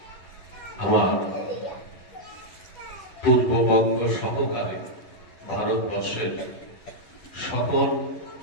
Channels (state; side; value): late; right; 11 ms